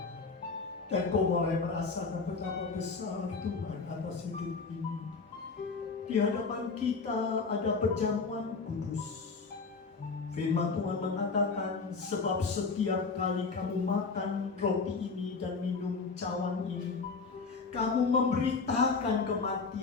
Dan kau mulai merasakan betapa besar Tuhan atas hidup ini. Di hadapan kita ada perjamuan kudus. Firman Tuhan mengatakan, sebab setiap kali kamu makan roti ini dan minum cawan ini, kamu memberitakan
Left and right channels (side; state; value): right; quieter; 4.5 dB